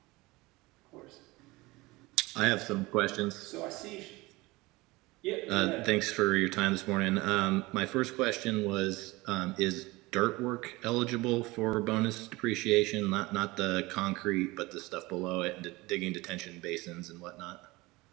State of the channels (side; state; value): left; quieter; 21.7 dB